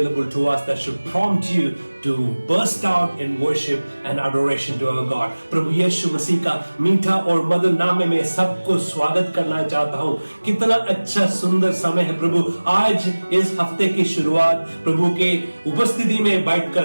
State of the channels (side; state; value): both; inverted; correlation -1.00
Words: to us that should prompt you to burst out in worship and adoration to our God. प्रभु यीशु मसीह का मीठा और मधुर नाम में मैं सबको स्वागत करना चाहता हूँ। कितना अच्छा सुंदर समय है प्रभु। आज इस हफ्ते की शुरुआत प्रभु के उपस्थिति में बैठकर